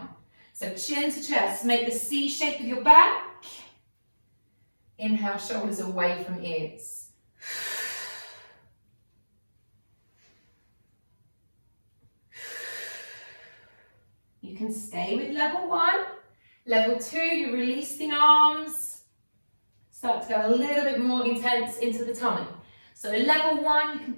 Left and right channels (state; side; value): inverted; both; correlation -1.00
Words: So chin to chest, make the C shape with your back. Inhale, shoulders away from ears. You can stay with level 1. Level 2, you release the arms. Start to go a little bit more intense into the tummy. So level 1, you can